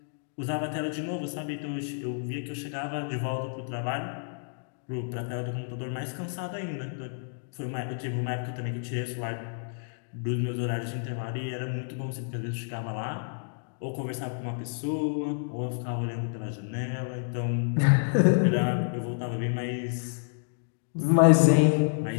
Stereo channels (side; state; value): right; silent; digital silence